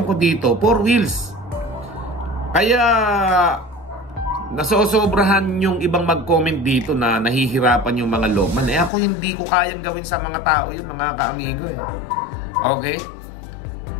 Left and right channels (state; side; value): drops out; right; at 8.9 s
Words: ko dito, 4 wheels. Kaya nasosobrahan yung ibang mag-comment dito na nahihirapan yung mga Lopman. Ako hindi ko kayang gawin sa mga tao yun, mga kaamigo eh. Okay?